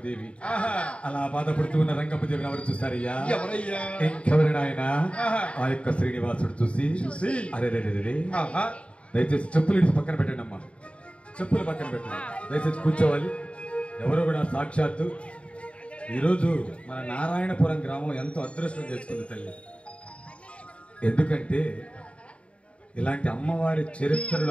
అలా బాధపడుతూ ఉన్న రంగమ్మదేవిని ఎవరు చూస్తారయ్యా? ఇంకెవరైనా ఆయన ఆ యొక్క శ్రీనివాసుడు చూసి అరే దయచేసి చెప్పులు ఇడిచి పక్కన పెట్టండి అమ్మా, చెప్పులు పక్కన పెట్టండి, దయచేసి కూర్చోవాలి. ఎవరు కూడా సాక్షాత్తు ఈరోజు మన నారాయణపురం గ్రామం ఎంతో అదృష్టం చేసుకుంది తల్లి. ఎందుకంటే ఇలాంటి అమ్మవారి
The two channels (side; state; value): right; late; 0.061 ms